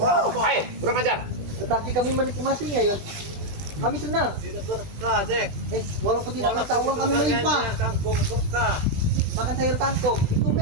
kurang ajar. Tetapi kami menikmatinya, Yot. Kami senang. tidak berkah, Jack. Walaupun tidak mata uang kami melimpah. Kangkung berkah. Makan sayur kangkung, itu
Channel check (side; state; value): left; late; 20 ms